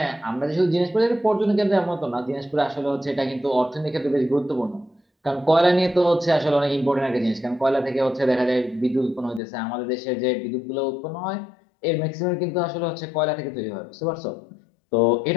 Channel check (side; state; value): right; drops out; at 9.4 s